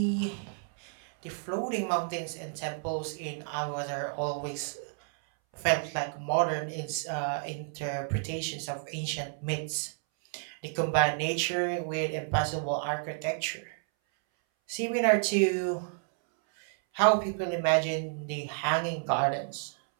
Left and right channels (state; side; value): silent; left; 57 dB below the other